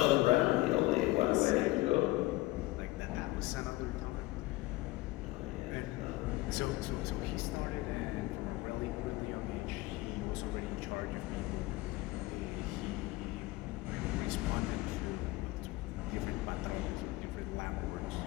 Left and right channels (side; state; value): right; quieter; 19.7 dB